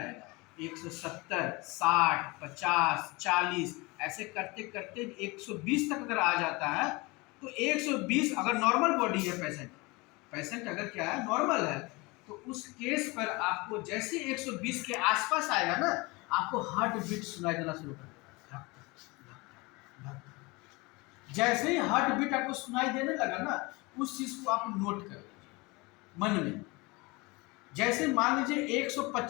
170, 60, 50, 40 ऐसे करते करते 120 तक अगर आ जाता है तो 120 अगर नॉर्मल बॉडी है पेशेंट अगर क्या है नॉर्मल है तो उस केस पर आपको जैसे 120 के आसपास आएगा ना आपको हार्ट बीट सुनाई देना शुरू कर देगा। जैसे ही हार्ट बीट आपको सुनाई देने लगा ना उस चीज को आप नोट कर लीजिए मन में। जैसे मान लीजिए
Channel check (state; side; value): quieter; right; 25.0 dB